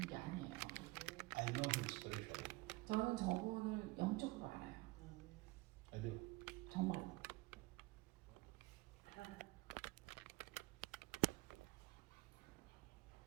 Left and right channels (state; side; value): quieter; left; 22.4 dB